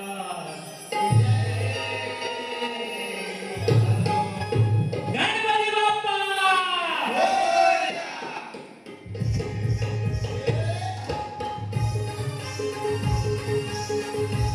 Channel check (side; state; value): both; identical; correlation 1.00